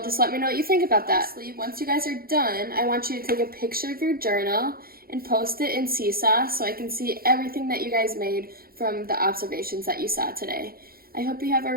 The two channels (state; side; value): late; left; 0.43 ms